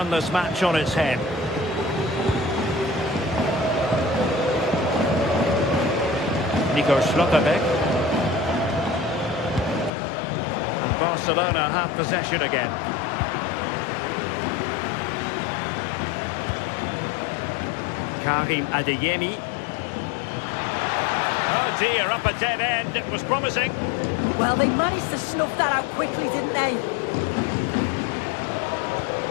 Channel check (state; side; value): drops out; right; at 9.9 s